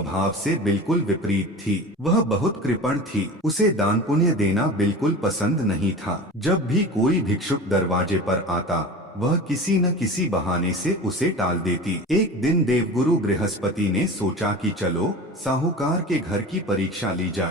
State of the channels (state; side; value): normal; both; correlation 0.34